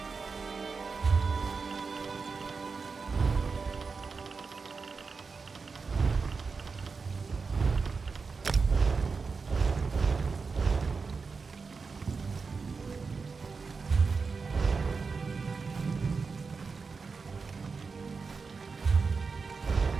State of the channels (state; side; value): quieter; left; 4.8 dB